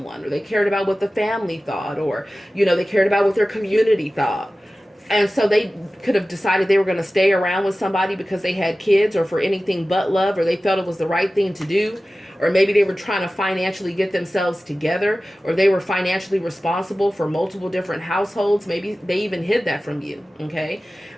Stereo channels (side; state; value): both; normal; correlation 0.96